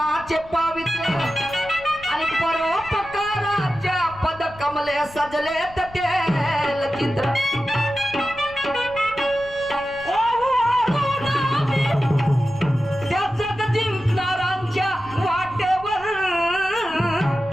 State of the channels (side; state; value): left; noise; rumble, 20 dB below the sound